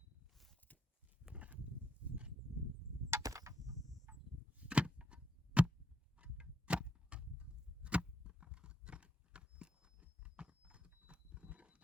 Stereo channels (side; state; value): both; normal; correlation 0.77